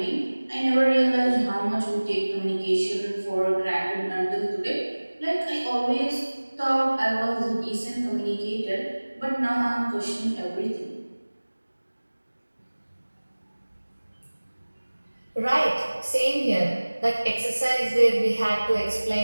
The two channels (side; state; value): both; inverted; correlation -1.00